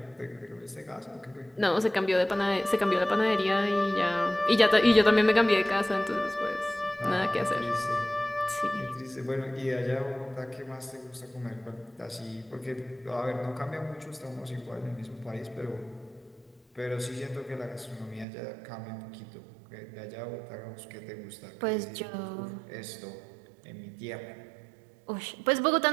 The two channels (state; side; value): drops out; left; at 18.2 s